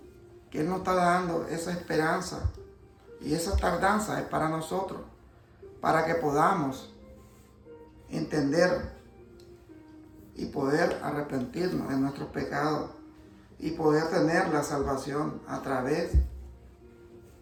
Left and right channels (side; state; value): both; identical; correlation 1.00